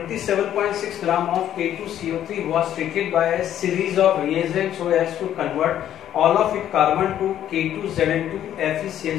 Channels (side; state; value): right; quieter; 11.1 dB